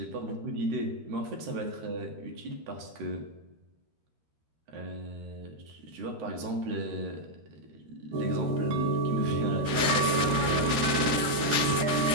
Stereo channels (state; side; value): late; left; 13 ms